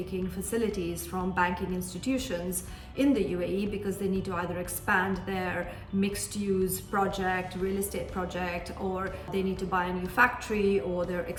facilities from banking institutions in the UAE because they need to either expand their mixed-use project, real estate project, or they need to buy a new factory, or they're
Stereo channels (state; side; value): identical; both; correlation 1.00